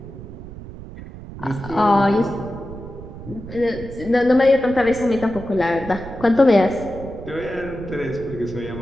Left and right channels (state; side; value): noise; right; rumble, 13 dB below the sound